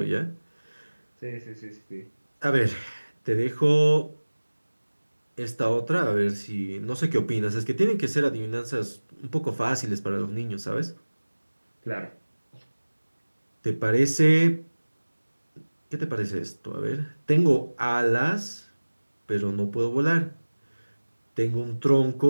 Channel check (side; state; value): both; inverted; correlation -1.00